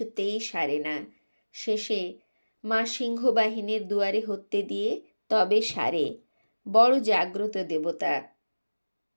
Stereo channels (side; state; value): both; inverted; correlation -1.00